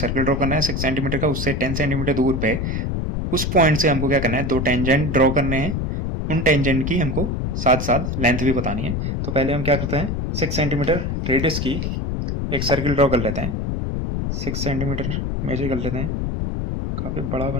ड्रॉ करना है 6 सेंटीमीटर का, उससे 10 सेंटीमीटर दूर पे उस पॉइंट से हमको क्या करना है, दो टेंजेंट ड्रॉ करने हैं, उन टेंजेंट की हमको साथ साथ लेंथ भी बतानी है। तो पहले हम क्या करते हैं, 6 सेंटीमीटर रेडियस की एक सर्कल ड्रॉ कर लेते हैं, 6 सेंटीमीटर मेजर कर लेते हैं, काफी बड़ा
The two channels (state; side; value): noise; left; rumble, 2 dB below the sound